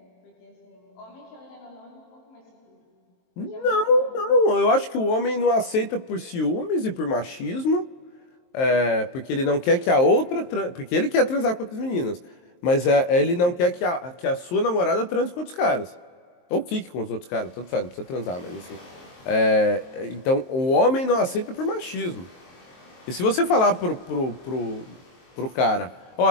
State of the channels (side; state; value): right; late; 23 ms